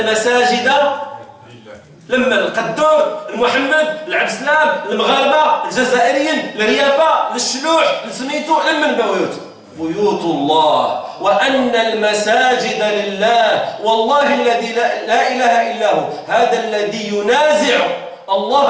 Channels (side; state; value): both; identical; correlation 1.00